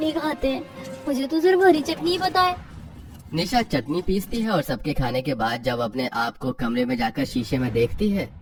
खाते हैं, मुझे तो सिर्फ हरी चटनी ही पता है। निशा चटनी पीसती है और सबके खाने के बाद जब अपने आप को कमरे में जाकर शीशे में देखती है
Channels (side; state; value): both; identical; correlation 1.00